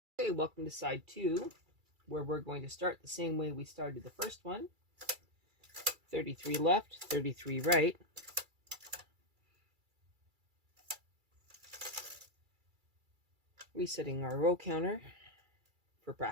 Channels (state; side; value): late; left; 2.3 ms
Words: Okay, welcome to side 2, where we're going to start the same way we started the first one. 33 left, 33 right. Resetting our row counter for